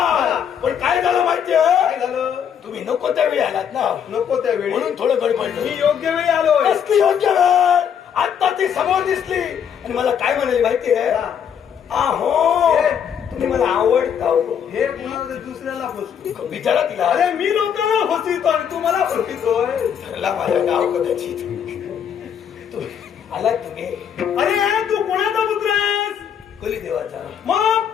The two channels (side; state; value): right; quieter; 8.2 dB